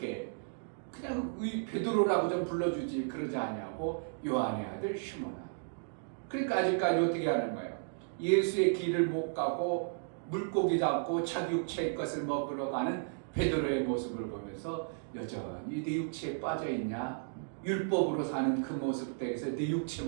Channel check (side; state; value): left; silent; digital silence